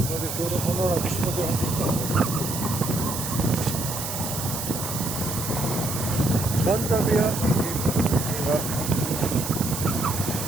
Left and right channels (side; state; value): right; noise; hiss, 5 dB below the sound